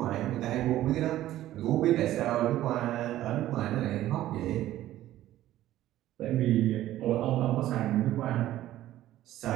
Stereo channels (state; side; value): quieter; left; 14.0 dB